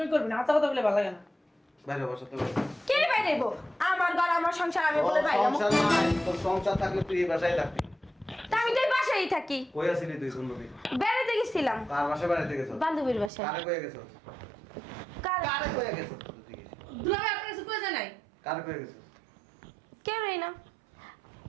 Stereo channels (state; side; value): drops out; left; at 13.3 s